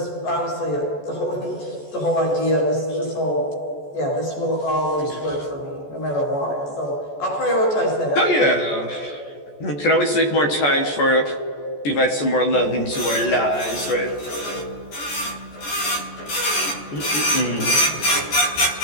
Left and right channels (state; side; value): late; right; 14 ms